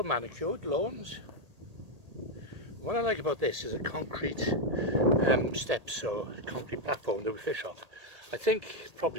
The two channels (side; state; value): left; late; 1.8 ms